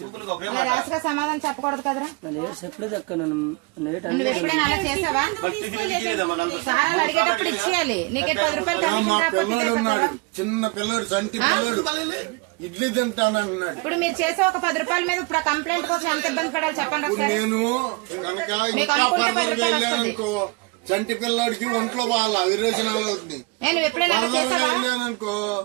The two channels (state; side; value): quieter; left; 27.4 dB